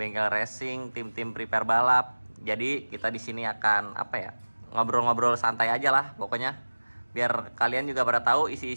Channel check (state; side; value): inverted; both; correlation -1.00